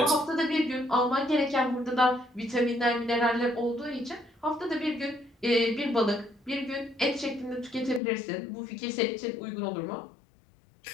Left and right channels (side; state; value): right; drops out; at 8.0 s